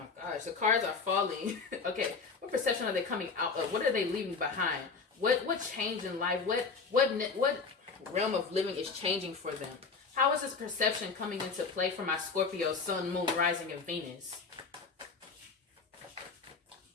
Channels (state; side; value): quieter; right; 4.8 dB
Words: gosh, the cards are falling. Okay, what perception are they coming out of? What are they leaving behind? What change in life? What realm of living is changing for them? How is this perception coming into play for my Scorpio, Sun, Moon, Rising, and Venus?